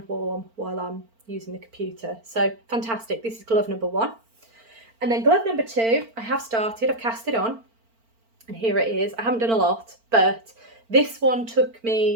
warm while I'm using the computer. So fantastic. This is glove number 1. And then glove number 2, I've cast it on, and here it is. I haven't done a lot, but this one took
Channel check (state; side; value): late; left; 4.4 ms